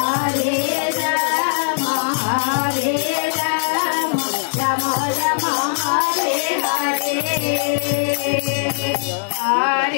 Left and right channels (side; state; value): right; silent; digital silence